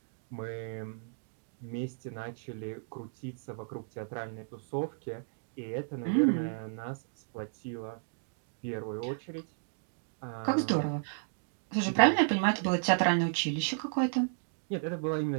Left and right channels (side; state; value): left; silent; digital silence